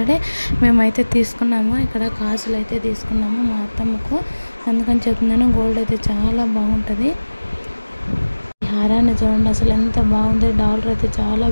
మేమైతే తీసుకున్నాము. ఇక్కడ కాసులు అయితే తీసుకున్నాము మా అత్తమ్మకు, అందుకని చెప్తున్నాను. గోల్డ్ అయితే చాలా బాగుంటుంది. హారాన్ని చూడండి అసలు ఎంత బాగుంది. డాలర్ అయితే చాలా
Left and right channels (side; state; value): both; inverted; correlation -1.00